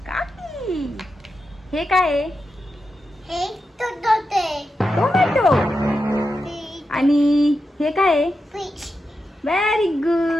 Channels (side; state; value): both; normal; correlation 0.88